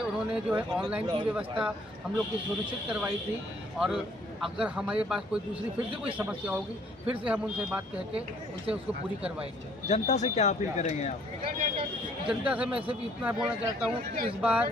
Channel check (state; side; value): normal; both; correlation 0.61